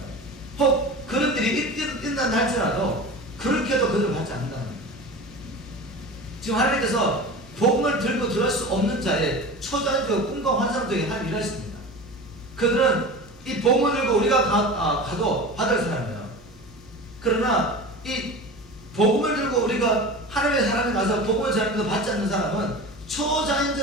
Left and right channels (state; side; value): noise; right; hum, 27 dB below the sound